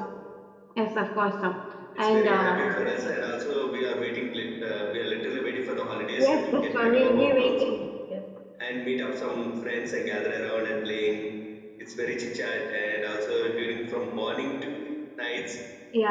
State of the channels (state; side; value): identical; both; correlation 1.00